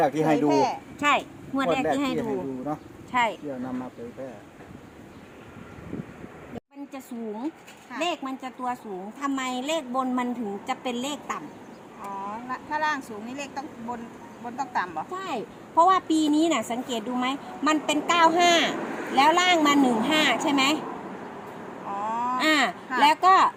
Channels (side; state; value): both; identical; correlation 1.00